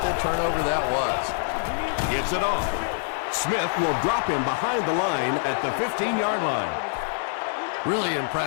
turnover that was. Gives it off. Smith will drop him behind the line at the 15-yard line. Really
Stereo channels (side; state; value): right; silent; 56 dB below the other